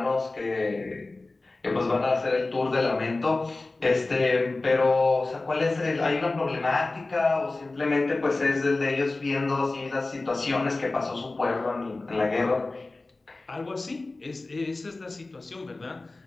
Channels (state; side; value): quieter; right; 3.2 dB